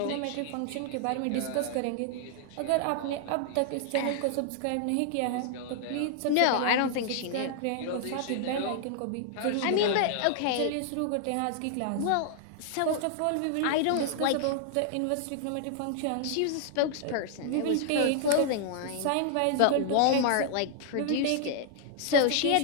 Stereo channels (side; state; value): both; different; correlation -0.01